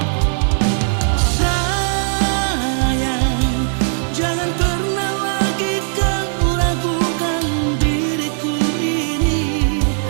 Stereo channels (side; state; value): left; silent; digital silence